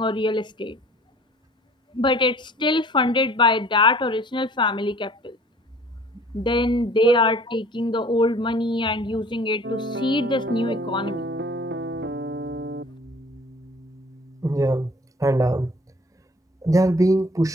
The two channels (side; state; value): both; normal; correlation 0.51